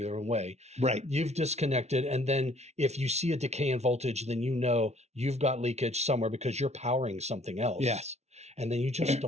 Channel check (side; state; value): left; late; 0.32 ms